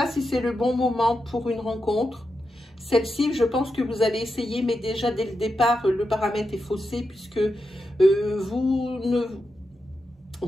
si c'est le bon moment pour une rencontre. Celle-ci, je pense que vous allez essayer, mais déjà dès le départ, le paramètre est faussé puisque vous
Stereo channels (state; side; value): normal; both; correlation 0.87